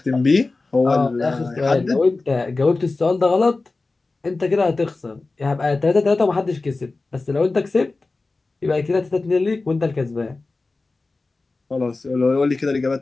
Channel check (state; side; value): quieter; right; 3.5 dB